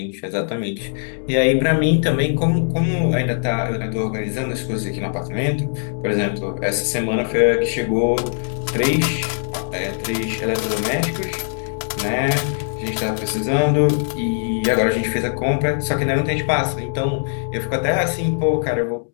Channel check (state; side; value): silent; right; digital silence